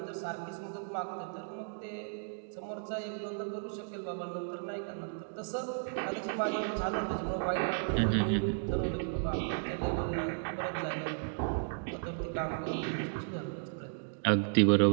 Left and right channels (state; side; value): silent; left; digital silence